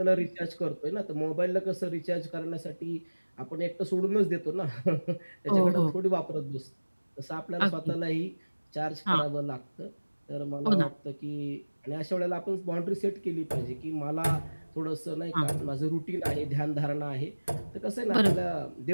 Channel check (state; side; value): inverted; both; correlation -1.00